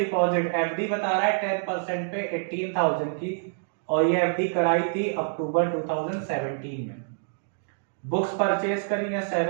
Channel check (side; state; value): left; silent; digital silence